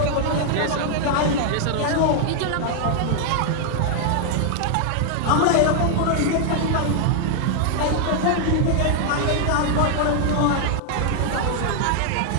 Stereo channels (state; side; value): different; both; correlation 0.00